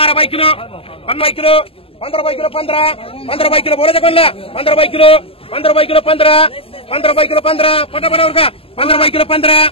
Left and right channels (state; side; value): late; right; 0.27 ms